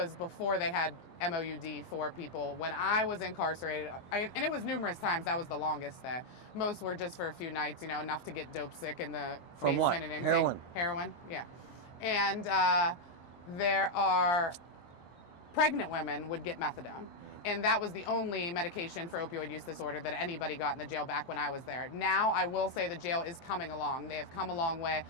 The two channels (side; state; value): right; late; 23 ms